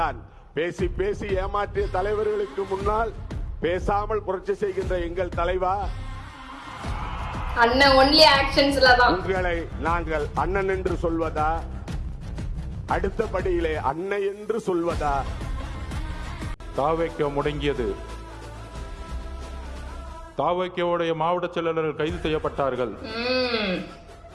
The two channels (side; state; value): both; identical; correlation 1.00